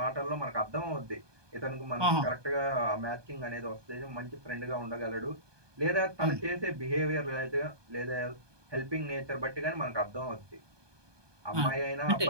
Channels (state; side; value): late; left; 1.2 ms